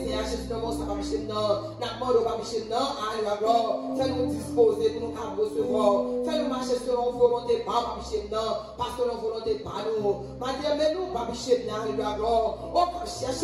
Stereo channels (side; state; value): both; identical; correlation 1.00